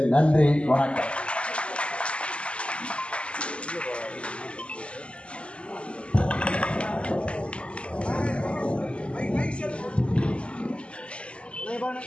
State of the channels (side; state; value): right; late; 0.056 ms